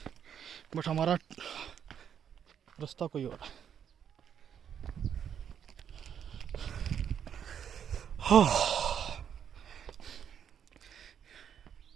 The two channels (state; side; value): quieter; left; 8.5 dB